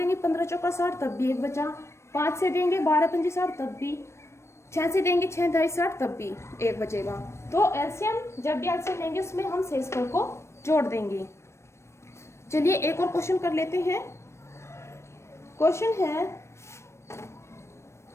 15 चौका 60 तब भी 1 बचा। 5 से देंगे 12 पंजे 60 तब भी। 6 से देंगे 6 ढाई 60 तब भी 1 बचेगा। तो LCM जब भी LCM लेंगे उसमें हम शेषफल को जोड़ देंगे। चलिए एक और क्वेश्चन कर लेते हैं। क्वेश्चन है,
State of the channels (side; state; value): right; late; 0.13 ms